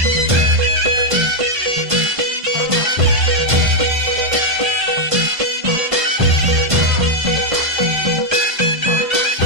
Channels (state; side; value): late; left; 1.5 ms